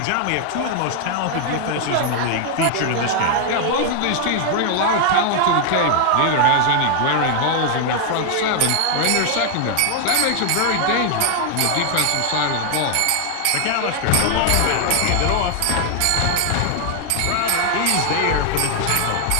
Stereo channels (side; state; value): both; different; correlation 0.00